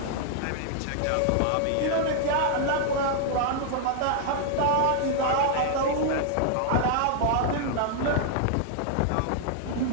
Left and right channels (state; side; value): different; both; correlation 0.00